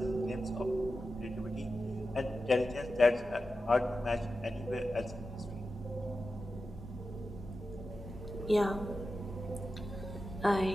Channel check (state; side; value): normal; both; correlation 0.92